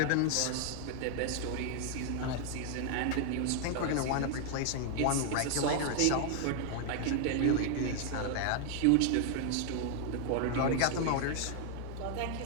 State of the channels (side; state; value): both; different; correlation 0.00